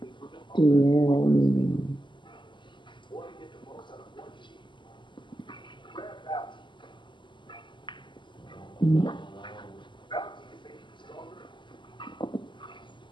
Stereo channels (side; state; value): right; late; 0.23 ms